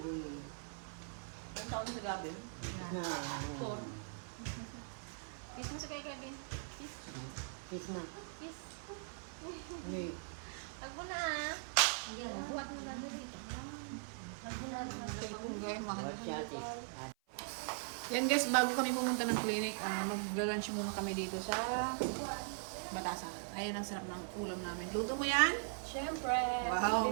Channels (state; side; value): silent; left; 51 dB below the other